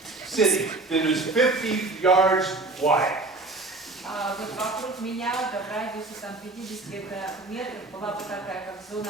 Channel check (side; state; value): left; quieter; 3.2 dB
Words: sitting that was 50 yards wide. вот вокруг меня, да, в радиусе там 50 метров, была бы такая, как